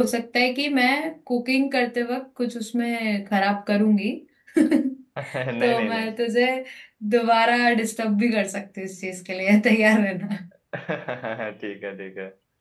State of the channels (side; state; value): both; identical; correlation 1.00